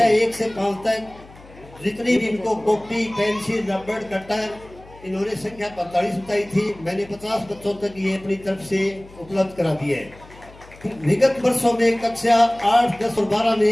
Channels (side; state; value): left; noise; hum, 22 dB below the sound